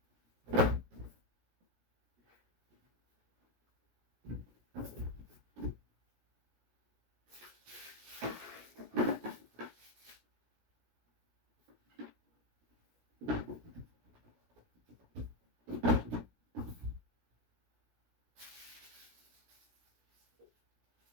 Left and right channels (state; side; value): late; left; 17 ms